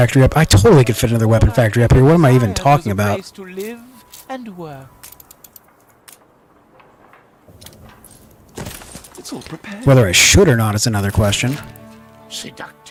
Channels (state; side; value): identical; both; correlation 1.00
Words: up. I totally could fit another weapon factory up here. What am I even talking about? Place to live and work. It's all prepared. Whether I should or not is another question.